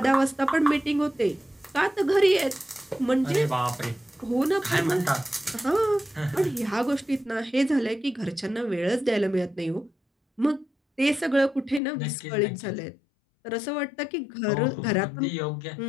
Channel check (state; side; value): drops out; right; at 11.8 s